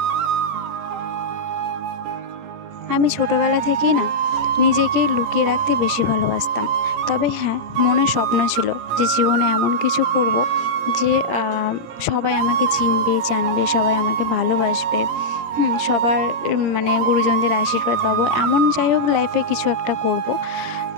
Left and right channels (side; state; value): left; late; 18 ms